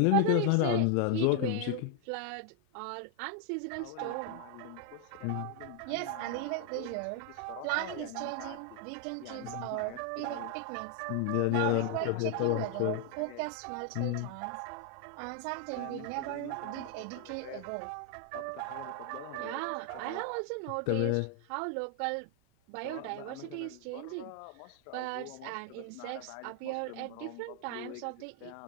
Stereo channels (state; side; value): different; both; correlation 0.00